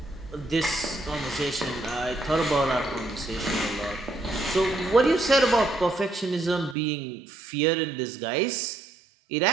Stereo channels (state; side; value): drops out; left; at 6.8 s